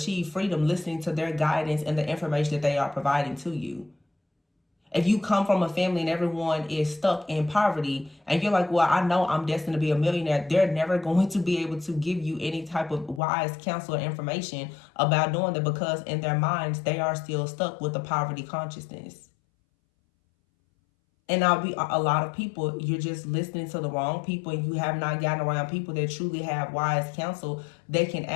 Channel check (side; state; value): right; drops out; at 13.2 s